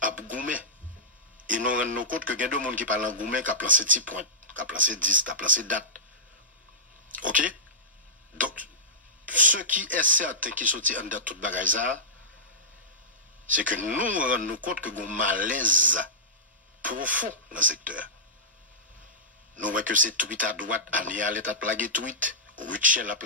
à Goumé. Et nous rendons compte que il y a deux monde qui parlent en Goumé, qui a placé 10 points, qui a placé 10, qui a placé date. Ok? Donc, ce qui est certain qui sortit en date toute bagaille, c'est que nous rendons compte que nous avons un malaise profond dans le secteur. Nous voyons que c'est tweet à droite, Anial est à plaguer tweet, Richel a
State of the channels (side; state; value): both; normal; correlation -0.15